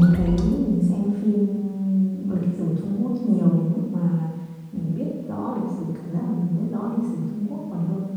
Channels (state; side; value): identical; both; correlation 1.00